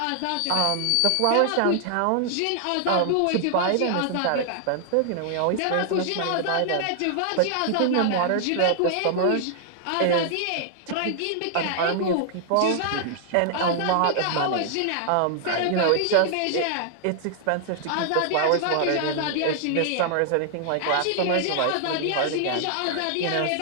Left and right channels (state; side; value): different; both; correlation -0.01